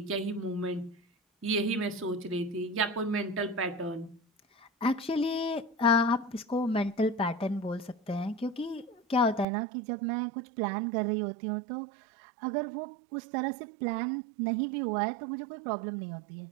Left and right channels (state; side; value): drops out; left; at 9.5 s